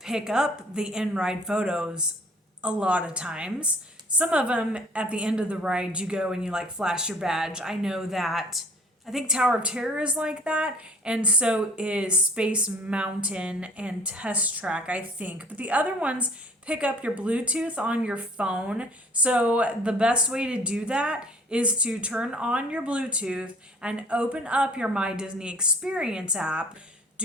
up the in-ride photos a lot of times. Some of them at the end of the ride, you go and you like flash your badge. I know that. I think Tower of Terror is like that, and so is Space Mountain and Test Track, I think. But the other ones pick up your Bluetooth on your phone. So the best way to do that is to turn on your Bluetooth and open up your My Disney Experience app.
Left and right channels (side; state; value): both; normal; correlation 0.52